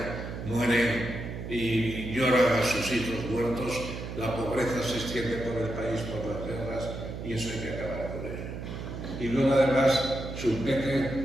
mueren y lloran a sus hijos muertos, la pobreza se extiende por el país por las guerras, y eso hay que acabar con ello. Y luego además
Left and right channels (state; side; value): noise; right; hum, 7 dB below the sound